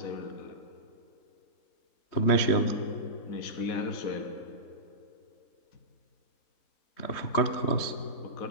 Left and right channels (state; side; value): late; right; 3.2 ms